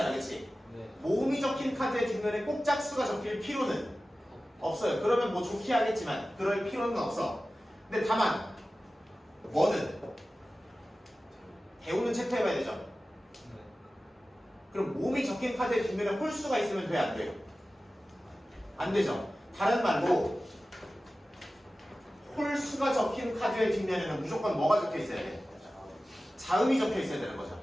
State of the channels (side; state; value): both; normal; correlation 0.95